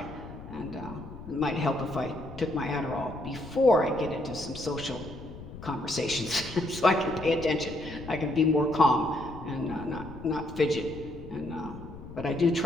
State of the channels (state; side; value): noise; left; rumble, 13 dB below the sound